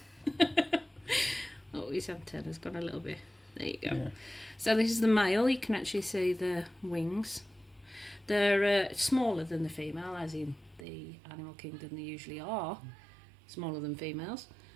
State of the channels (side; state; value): left; drops out; at 10.9 s